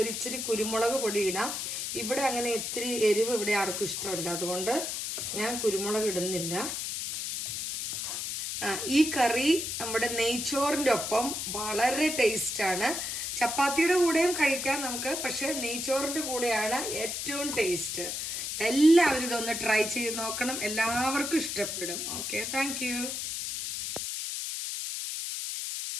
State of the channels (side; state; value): left; noise; hiss, 3 dB below the sound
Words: ഒരു ഇച്ചിരി കുരുമുളക് പൊടി ഇടാം. ഇവിടെ അങ്ങനെ ഇത്തിരി എരിവ് ഇവിടെ ആർക്കും ഇഷ്ടമല്ല, അതുകൊണ്ട് ഞാൻ കുരുമുളക് ഇടുന്നില്ല. ഈ കറി നമ്മുടെ നെയ്ച്ചോറിൻ്റെ ഒപ്പം വളരെ ടേസ്റ്റാണ്. ചപ്പാത്തിയുടെ കൂടെയും കഴിക്കാം നമുക്ക്, പക്ഷെ നെയ്ച്ചോറിൻ്റെ കൂടെയാണ് ഏറ്റവും ടേസ്റ്റ്. എല്ലാവരും ഇതൊന്ന് ട്രൈ ചെയ്ത് നോക്കണം. എല്ലാവർക്കും ഇഷ്ടപ്പെടും. Okay, thank